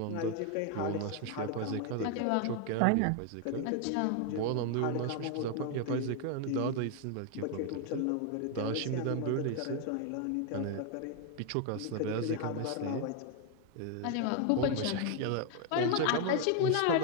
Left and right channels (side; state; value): both; different; correlation 0.00